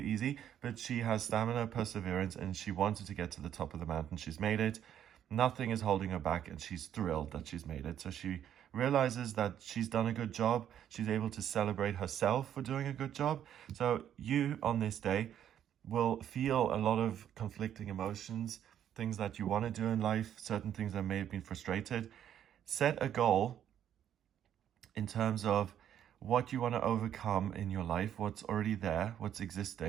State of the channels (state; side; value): quieter; left; 10.1 dB